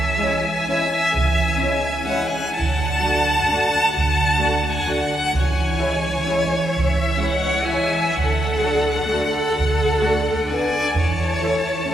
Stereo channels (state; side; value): normal; both; correlation 0.82